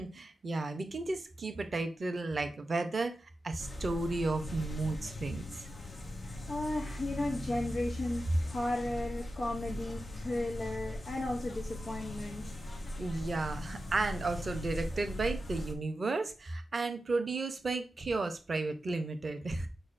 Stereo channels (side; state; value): both; normal; correlation 0.91